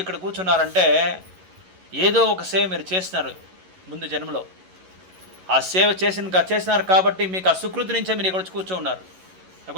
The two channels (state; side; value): late; left; 11 ms